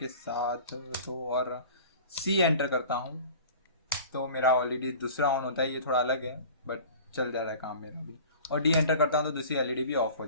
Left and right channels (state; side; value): inverted; both; correlation -0.42